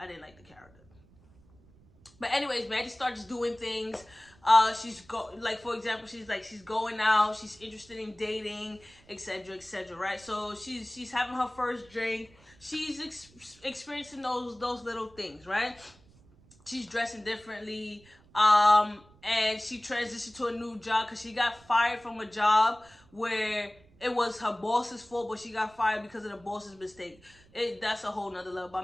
like the character. But anyways, Maddie starts doing things. Like, for example, she's going out, she's interested in dating, etc., etc., right? So she's having her first drink. She's experiencing those little things, right? She's dressing differently, and she transitioned to a new job because she got fired from a job where it was her boss's fault, but she got fired because of the boss's mistake. That's a whole nother level, but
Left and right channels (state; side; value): noise; right; rumble, 27 dB below the sound